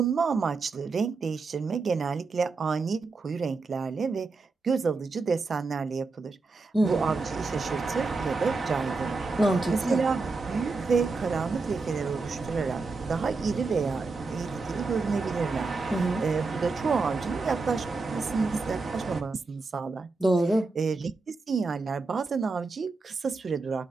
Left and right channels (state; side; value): quieter; left; 4.0 dB